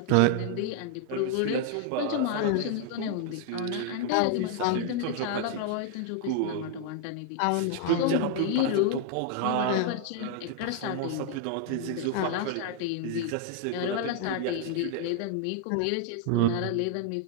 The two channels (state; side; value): different; both; correlation 0.00